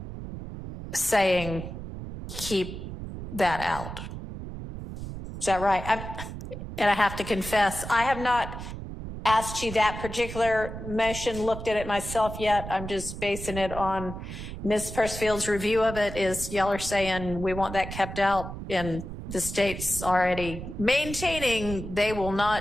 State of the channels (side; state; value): right; noise; rumble, 9 dB below the sound